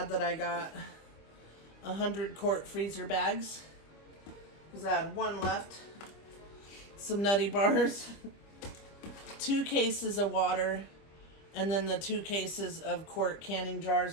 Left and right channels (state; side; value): late; right; 25 ms